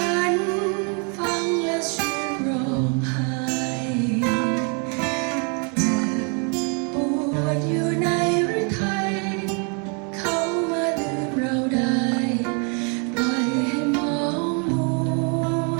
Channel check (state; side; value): quieter; left; 37.2 dB